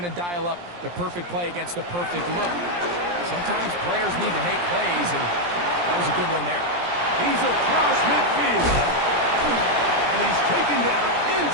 to dial up the perfect play against the perfect look. Sometimes players need to make plays, and that was a good one there. He's across midfield. And he's taken down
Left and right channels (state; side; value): late; left; 17 ms